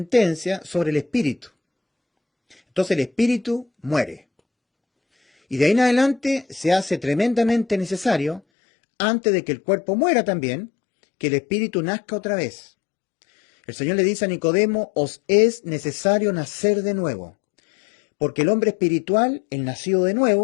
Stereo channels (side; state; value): right; drops out; at 8.4 s